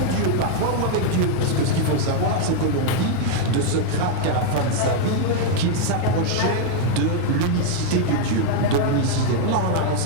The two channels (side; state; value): both; different; correlation 0.00